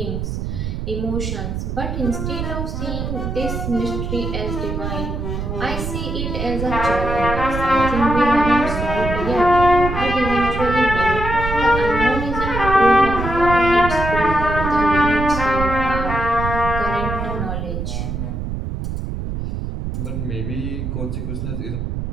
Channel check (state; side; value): noise; right; rumble, 4 dB below the sound